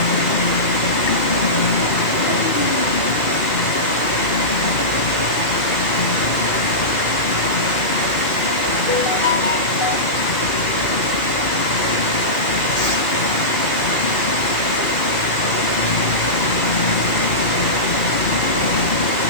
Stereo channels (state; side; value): late; right; 2.4 ms